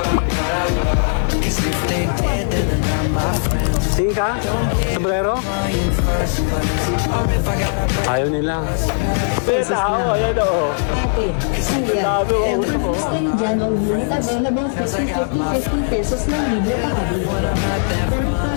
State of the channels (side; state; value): right; silent; 67 dB below the other